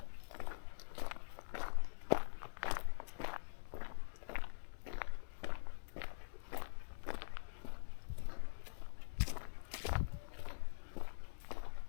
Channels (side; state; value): right; silent; digital silence